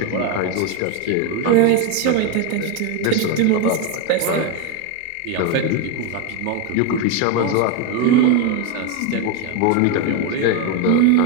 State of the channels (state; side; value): different; both; correlation 0.02